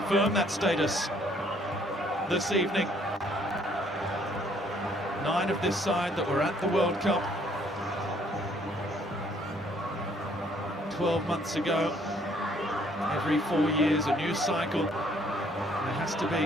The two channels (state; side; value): normal; both; correlation 0.64